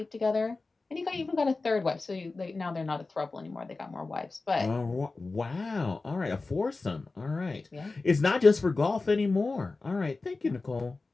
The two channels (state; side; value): quieter; right; 3.6 dB